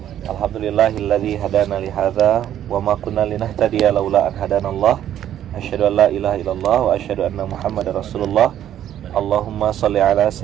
Alhamdulillahilladzi hadana li hadza wa ma kunna linahtadiya laula an hadanallah. Asyhadu an la ilaha illallah wa asyhadu anna Muhammadar Rasulullah. Allahumma shalli ala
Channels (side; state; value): left; quieter; 11.1 dB